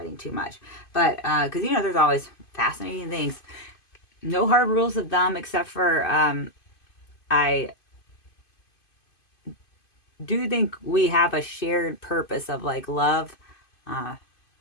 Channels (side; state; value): right; late; 2.5 ms